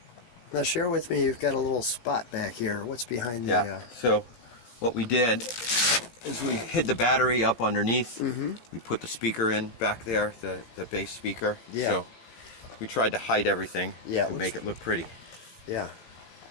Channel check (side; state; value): right; late; 17 ms